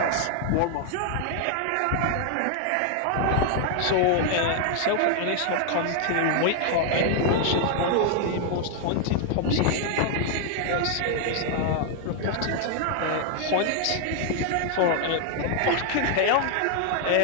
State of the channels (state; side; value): different; both; correlation 0.00